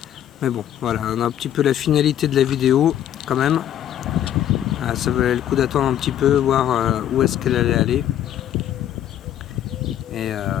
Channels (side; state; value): right; quieter; 11.0 dB